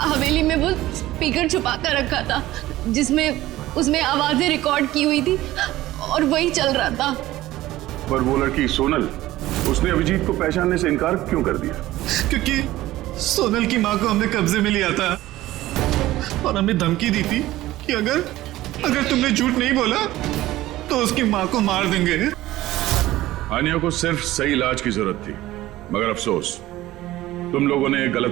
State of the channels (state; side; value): quieter; left; 16.2 dB